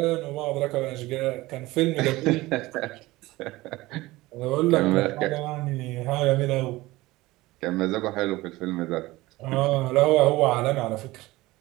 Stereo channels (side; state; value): left; quieter; 19.3 dB